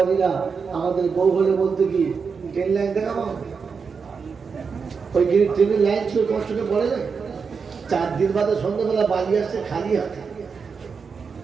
আমাদের বউ হলে বলতে কি ট্রেন লাইন দেখাবো, ওই ট্রেনের লাইন ছিল তোমার চোখে পড়ে যায়। 4 দিন বাদে সন্ধ্যাবেলা বাড়ি আসছে খালি হাতে,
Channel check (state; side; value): quieter; left; 5.5 dB